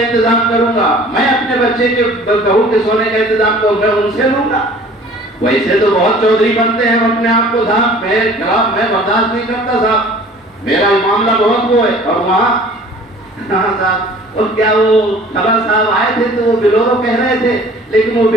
کروں گا، میں اپنے بچے کے بہو کے سونے کا انتظام کروں، میں ان سے لوں گا۔ ویسے تو بہت چودھری بنتے ہیں اپنے آپ کو، صاحب میں برداشت نہیں کرتا، صاحب میرا معاملہ بہت وہ ہے، اور وہاں صاحب اور کیا وہ خبر صاحب آئے تھے تو وہ بلورو کہہ رہے تھے، لیکن وہ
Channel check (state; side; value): normal; both; correlation 0.49